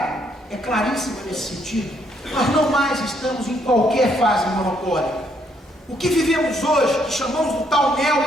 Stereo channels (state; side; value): normal; both; correlation 0.71